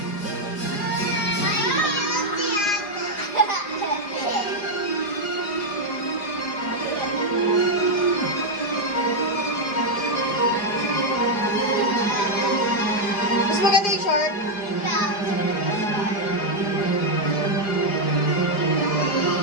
Mas maganda yung short.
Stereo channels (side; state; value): right; late; 4.9 ms